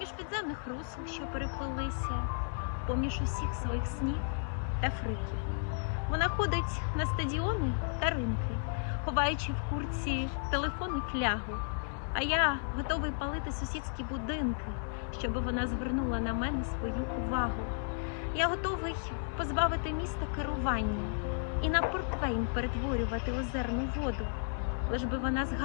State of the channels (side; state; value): right; silent; digital silence